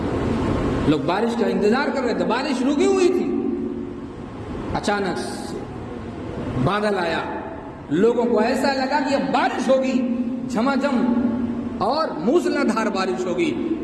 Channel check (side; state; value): both; identical; correlation 1.00